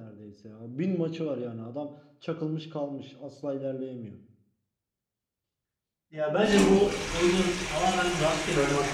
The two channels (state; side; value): identical; both; correlation 1.00